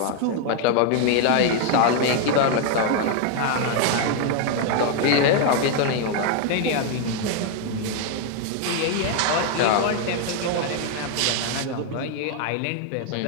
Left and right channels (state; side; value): different; both; correlation 0.01